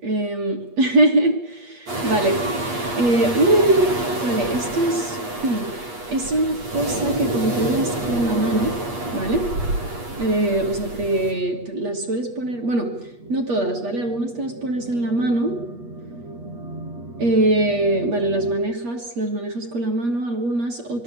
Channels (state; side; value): late; left; 8.4 ms